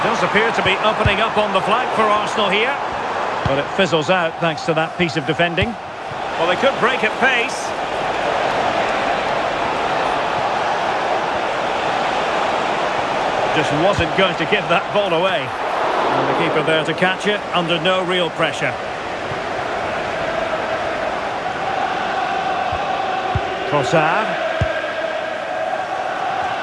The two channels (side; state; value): both; identical; correlation 1.00